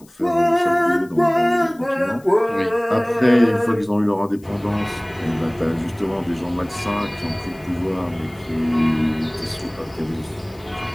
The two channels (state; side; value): noise; left; hiss, 28 dB below the sound